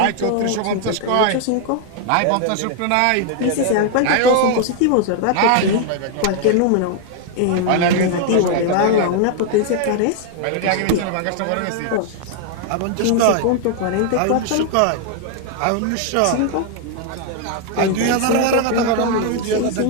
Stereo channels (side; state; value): both; different; correlation 0.00